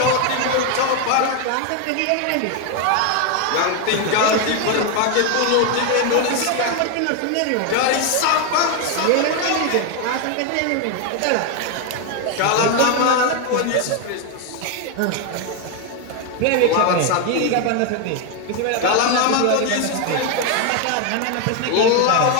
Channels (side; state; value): both; different; correlation 0.01